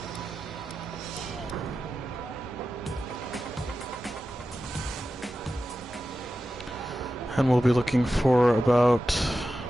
And we'll be looking for about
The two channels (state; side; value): normal; both; correlation 0.92